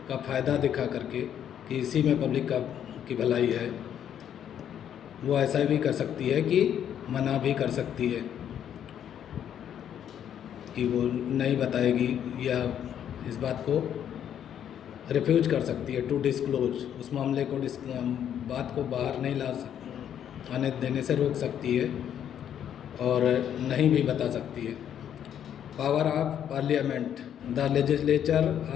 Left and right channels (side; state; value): right; quieter; 9.6 dB